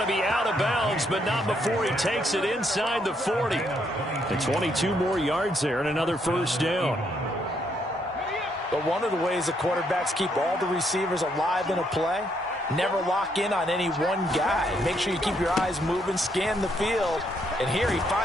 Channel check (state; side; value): normal; both; correlation 0.74